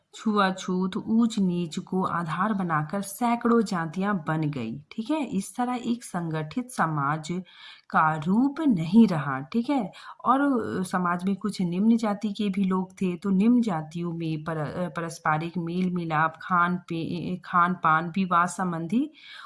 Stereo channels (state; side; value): identical; both; correlation 1.00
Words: छुआछूत, ऊंच नीच को आधार बनाकर सैकड़ों जातियां बन गई। ठीक है, इस तरह एक संगठित समाज का रूप नहीं रहा। ठीक है, और समाज में कुछ निम्न जाति के भी लोग थे, तो निम्न जातियों में पारस्परिक मेल मिलाप, खान पान, विवाह संबंधी